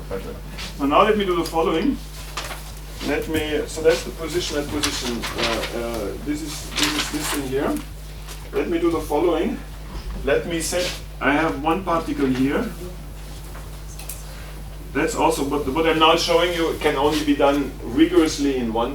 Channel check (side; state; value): both; identical; correlation 1.00